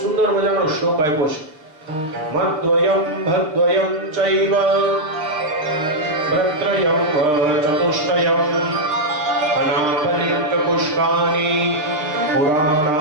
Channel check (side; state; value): left; late; 6.6 ms